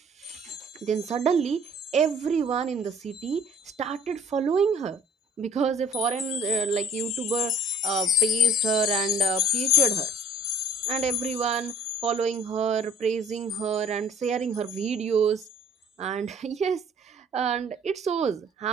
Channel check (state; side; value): normal; both; correlation 0.53